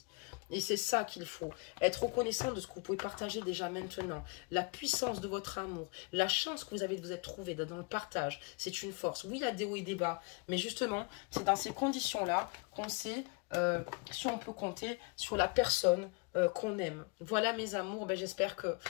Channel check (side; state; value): right; quieter; 29.5 dB